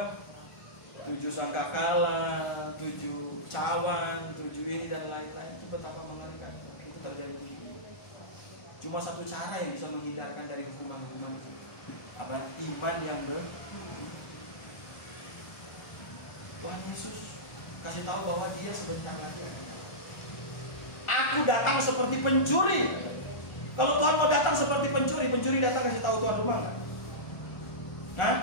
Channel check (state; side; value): late; right; 1.4 ms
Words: sangkakala, 7 cawan, 7 ini dan lain-lain. Itu betapa mengerikan itu terjadi begini. Cuma satu cara yang bisa menghindarkan dari hukuman-hukuman itu, apa? Iman yang Tuhan Yesus kasih tahu bahwa dia sebentar lagi akan datang. Aku datang seperti pencuri. Kalau Tuhan mau datang seperti pencuri datang kasih tahu tuan rumah nggak?